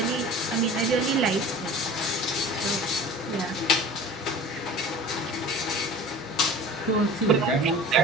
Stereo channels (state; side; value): normal; both; correlation 0.40